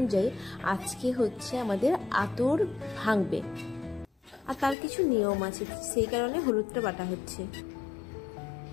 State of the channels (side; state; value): right; drops out; at 4.8 s